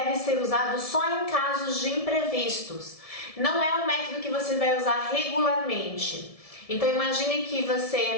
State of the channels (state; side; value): late; right; 1.7 ms